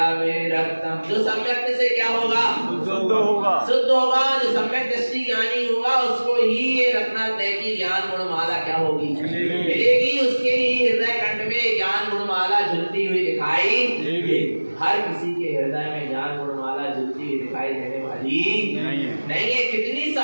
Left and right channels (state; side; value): inverted; both; correlation -1.00